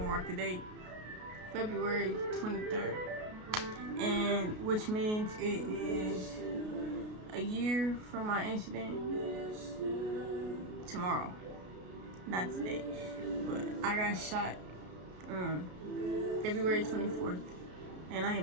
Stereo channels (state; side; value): late; left; 33 ms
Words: mark the date, February 23rd. And which means it is a year from my incident tomorrow. Not today, but I got shot February 24th, and I